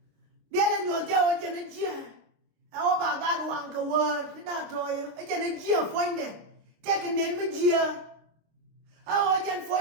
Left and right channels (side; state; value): left; late; 26 ms